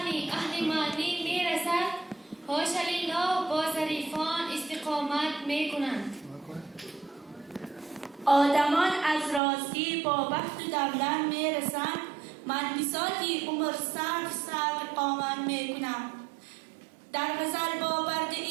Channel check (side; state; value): left; drops out; at 9.4 s